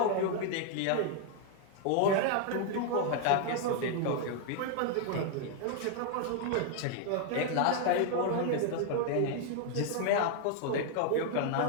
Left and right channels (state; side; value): different; both; correlation 0.00